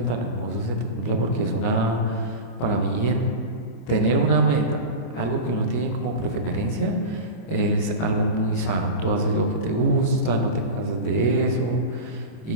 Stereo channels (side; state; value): right; late; 25 ms